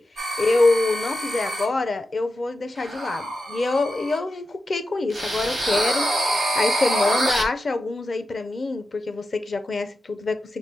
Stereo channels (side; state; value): both; normal; correlation 0.90